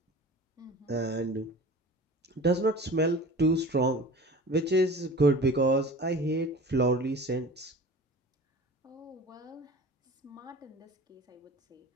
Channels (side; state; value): both; normal; correlation 0.39